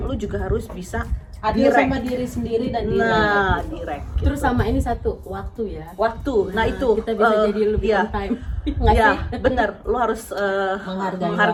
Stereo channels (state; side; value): identical; both; correlation 1.00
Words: lu juga harus bisa Adil direct. sama diri sendiri dan diri. Nah, direct gitu. Terus sama ini satu, waktu ya. Waktu, nah itu kita bisa jadi lebih iya. on time. Nggak Ya, sih? bener. Lu harus